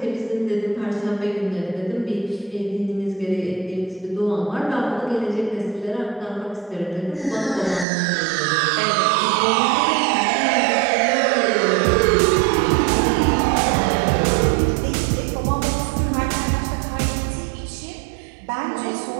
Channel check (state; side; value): drops out; left; at 7.9 s